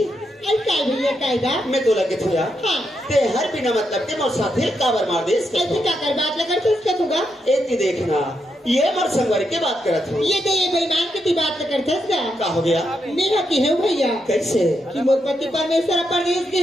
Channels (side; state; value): both; normal; correlation 0.82